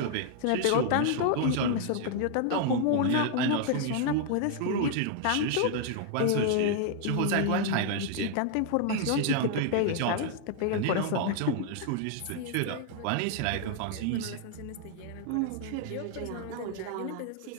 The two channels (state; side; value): different; both; correlation 0.00